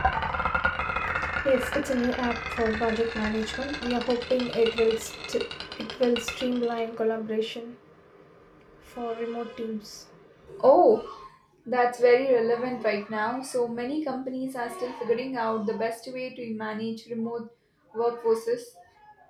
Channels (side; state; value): both; identical; correlation 1.00